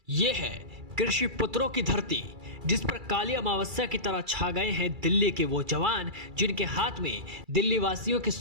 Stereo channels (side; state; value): left; late; 2.3 ms